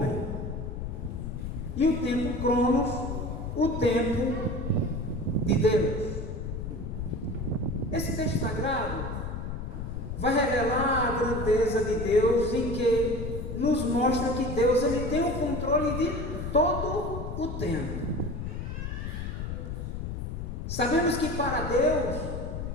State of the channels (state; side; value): noise; left; rumble, 5 dB below the sound